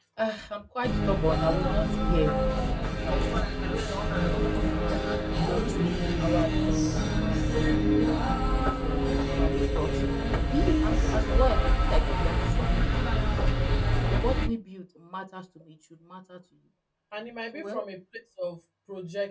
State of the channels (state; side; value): identical; both; correlation 1.00